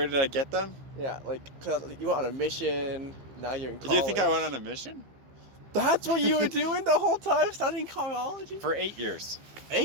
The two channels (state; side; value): late; left; 15 ms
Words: did I get them? Yeah, like, cause you went on a mission, now you're in college. Do you think I went on a mission? That's what you were doing the whole time, studying carology? For 8 years.